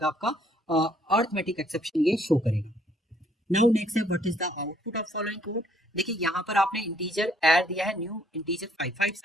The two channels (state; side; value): normal; both; correlation 0.64